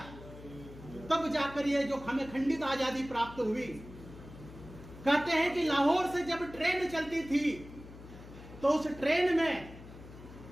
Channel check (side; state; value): left; noise; hum, 16 dB below the sound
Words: तब जाकर ये जो हमें खंडित आजादी प्राप्त हुई। कहते हैं कि लाहौर से जब ट्रेन चलती थी तो उस ट्रेन में